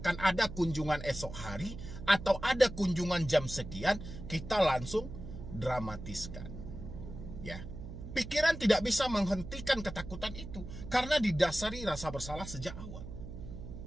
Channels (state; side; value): noise; right; hum, 10 dB below the sound